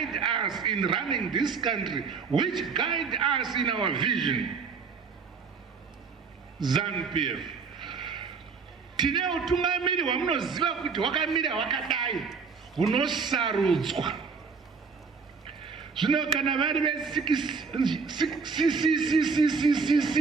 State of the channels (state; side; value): quieter; left; 5.2 dB